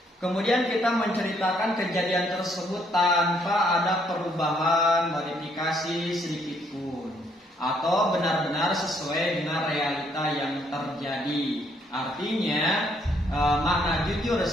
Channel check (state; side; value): normal; both; correlation 0.69